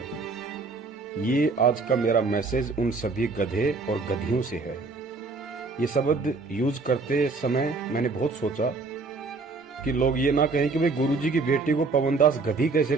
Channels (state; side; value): quieter; left; 3.9 dB